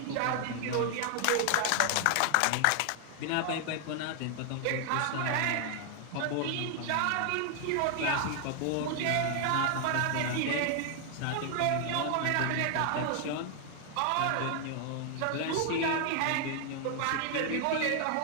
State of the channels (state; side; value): different; both; correlation 0.00